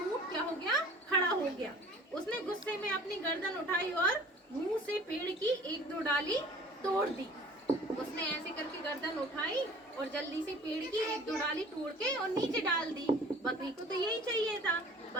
क्या हो गया, खड़ा हो गया। उसने गुस्से में अपनी गर्दन उठाई और मुंह से पेड़ की 1-2 डाली तोड़ दी। उसने ऐसे करके गर्दन उठाई और जल्दी से पेड़ की 1-2 डाली तोड़ के और नीचे डाल दी। बकरी को तो यही चाहिए था,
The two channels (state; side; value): normal; both; correlation 0.48